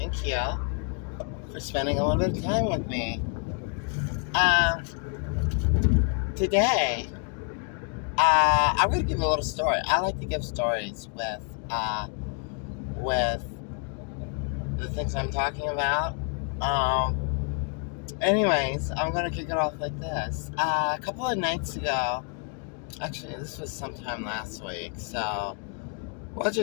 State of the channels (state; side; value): quieter; right; 39.2 dB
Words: you for spending a little bit of time with me. Um, Today, I'm going to give a little story. I like to give stories with the things I'm talking about. Anyways, I'm going to kick it off like this. A couple of nights ago, actually, this was sometime last week, so we'll